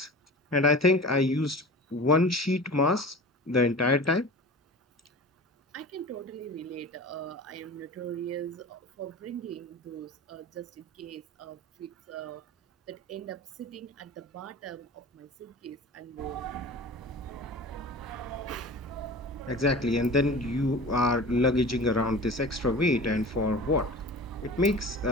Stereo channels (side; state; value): both; normal; correlation 0.37